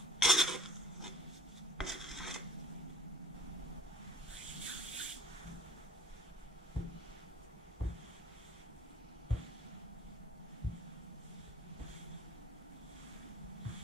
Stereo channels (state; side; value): normal; both; correlation 0.50